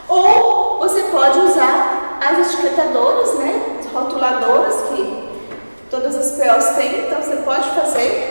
Ou você pode usar as etiquetadoras, né, as rotuladoras que todas as POs têm, então você pode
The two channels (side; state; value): both; inverted; correlation -1.00